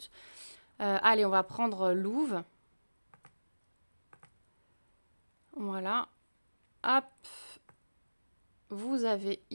Allez, on va prendre Louve. Voilà. Hop. Vous avez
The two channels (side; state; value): both; inverted; correlation -1.00